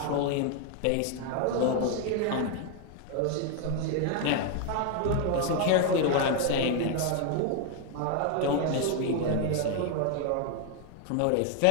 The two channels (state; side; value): different; both; correlation 0.01